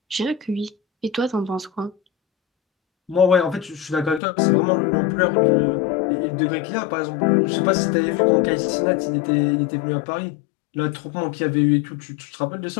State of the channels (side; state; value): right; drops out; at 4.2 s